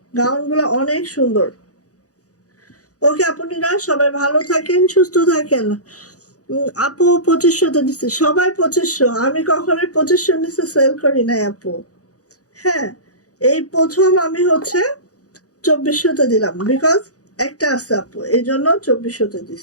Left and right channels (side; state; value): right; late; 0.67 ms